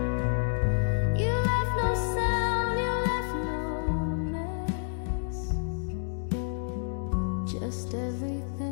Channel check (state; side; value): silent; right; digital silence